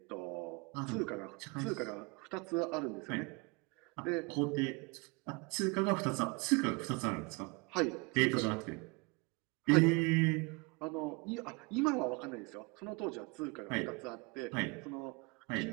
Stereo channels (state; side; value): quieter; left; 28.5 dB